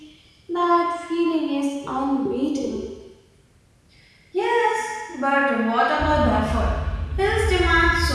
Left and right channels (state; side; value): identical; both; correlation 1.00